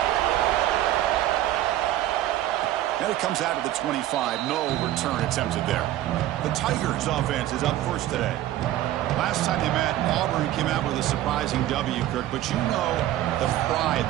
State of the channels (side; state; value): left; quieter; 13.8 dB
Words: And it comes out of the 25. No return attempted there. The Tigers offense is up first today. Last time they met, Auburn came out with a surprising W, Kirk. But you know the pride,